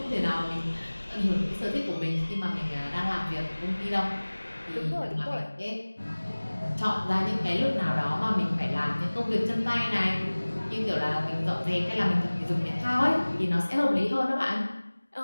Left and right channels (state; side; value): inverted; both; correlation -1.00